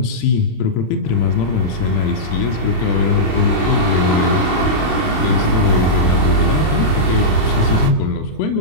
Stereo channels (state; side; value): late; right; 27 ms